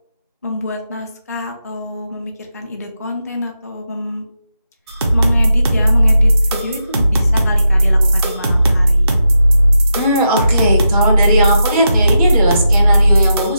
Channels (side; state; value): both; inverted; correlation -0.86